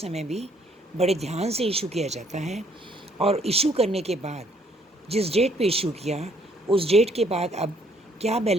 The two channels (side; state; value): both; normal; correlation 0.65